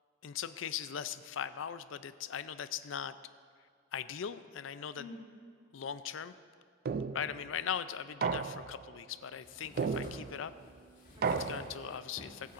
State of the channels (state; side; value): normal; both; correlation -0.04